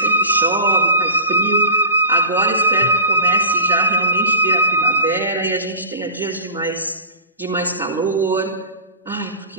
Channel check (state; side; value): inverted; both; correlation -0.33